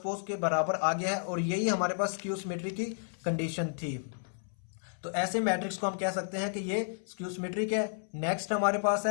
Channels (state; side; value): silent; right; 56 dB below the other